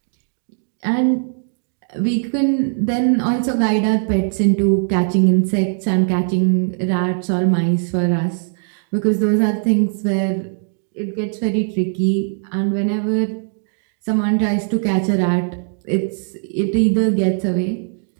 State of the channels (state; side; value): silent; left; digital silence